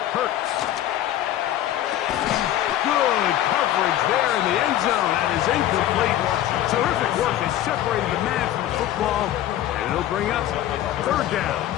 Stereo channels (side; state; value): right; quieter; 12.7 dB